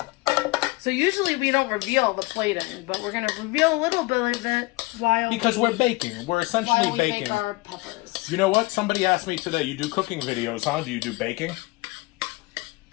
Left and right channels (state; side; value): quieter; right; 23.7 dB